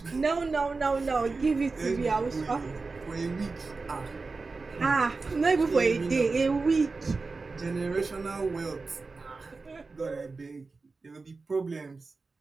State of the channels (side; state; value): left; quieter; 4.0 dB